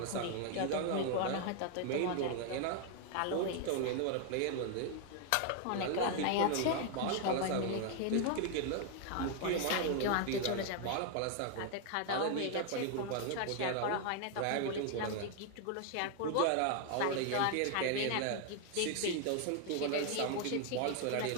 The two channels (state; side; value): different; both; correlation 0.00